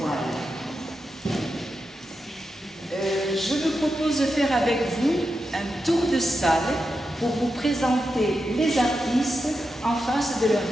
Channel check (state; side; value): normal; both; correlation 0.88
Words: Je vous propose de faire avec vous un tour de salle pour vous présenter les artistes en face de leurs